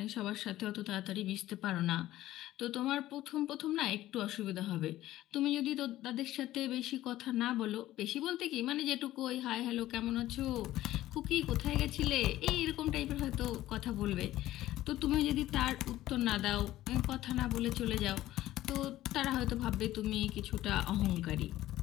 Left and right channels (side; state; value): right; quieter; 14.9 dB